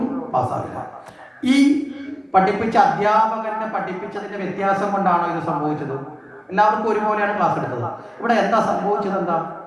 പാസ്സാവില്ല. ഈ പഠിപ്പിച്ച അധ്യാപകനെ പഠിപ്പിച്ചതിന്റെ വ്യത്യാസം കൊണ്ടാണോ ഇത് സംഭവിച്ചത്? എല്ലാവർക്കും ഒരുപോലെയാണ് ക്ലാസ് എടുത്തത്. ഇവിടെ എന്താ സംഭവിച്ചത്? എന്താ?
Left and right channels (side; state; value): both; identical; correlation 1.00